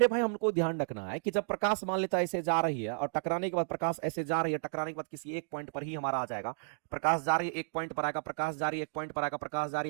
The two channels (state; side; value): silent; left; digital silence